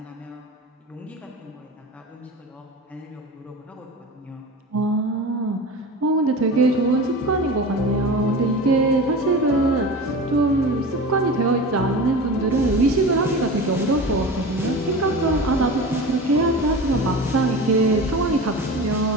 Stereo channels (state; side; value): normal; both; correlation 0.32